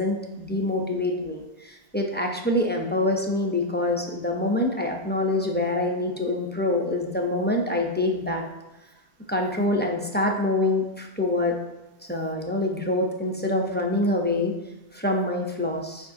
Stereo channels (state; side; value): normal; both; correlation 0.01